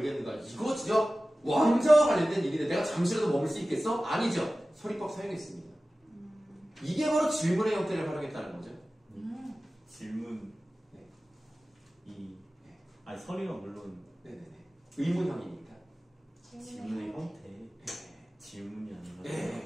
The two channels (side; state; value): both; normal; correlation 0.96